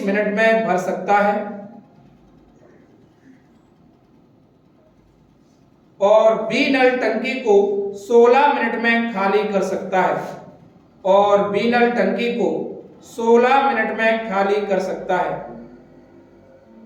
मिनट में भर सकता है, और बी नल टंकी को 16 मिनट में खाली कर सकता है, और बी नल टंकी को 16 मिनट में खाली कर सकता है।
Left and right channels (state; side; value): identical; both; correlation 1.00